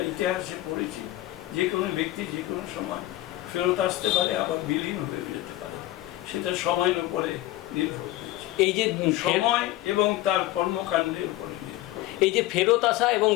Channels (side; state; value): right; quieter; 16.2 dB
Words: ইতিহাসে পড়েছি, যে কোনো ব্যক্তি যে কোনো সময় ফেরত আসতে পারে, আবার বিলীন হয়ে যেতে পারে। সেটা সময়ের উপরে নির্ভর করছে, এই যে সময় এবং তার কর্মকাণ্ডের উপরে। এই যে ফেরত আসা এবং